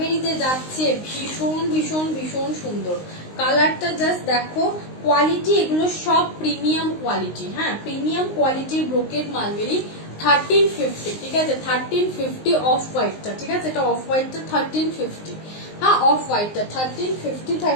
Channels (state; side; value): late; right; 19 ms